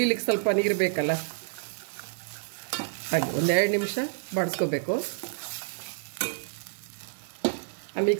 ಸ್ವಲ್ಪ ನೀರು ಬೇಕಲ್ಲ, ಹಾಗೆ ಒಂದು 2 ನಿಮಿಷ ಬಾಡಿಸ್ಕೋಬೇಕು. ಆ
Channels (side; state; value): left; silent; digital silence